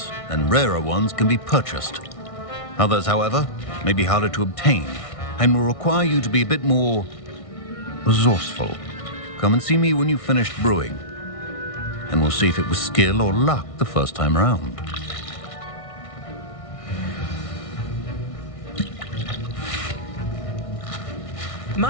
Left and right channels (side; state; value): right; late; 1.6 ms